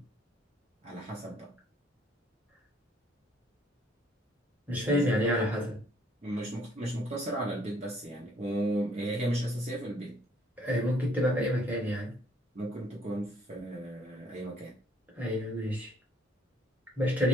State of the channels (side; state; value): both; normal; correlation 0.63